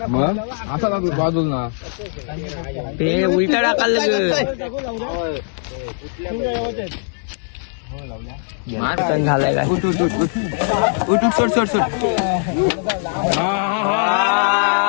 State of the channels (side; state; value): right; silent; digital silence